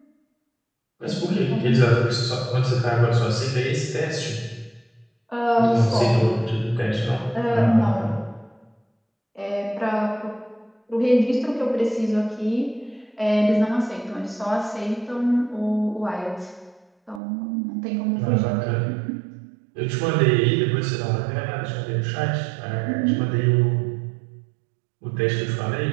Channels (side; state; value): left; drops out; at 17.2 s